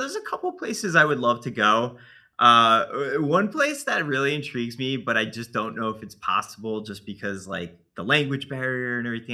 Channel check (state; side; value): identical; both; correlation 1.00